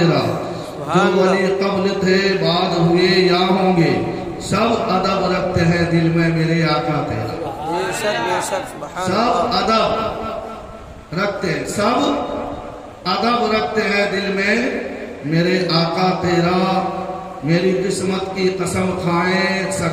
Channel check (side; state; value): both; identical; correlation 1.00